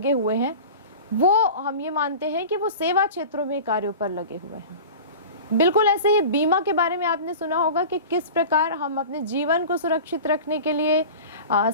हुए हैं वो हम ये मानते हैं कि वो सेवा क्षेत्रों में कार्यों पर लगे हुए हैं। बिल्कुल ऐसे ही बीमा के बारे में आपने सुना होगा कि किस प्रकार हम अपने जीवन को सुरक्षित रखने के लिए,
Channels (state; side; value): inverted; both; correlation -0.35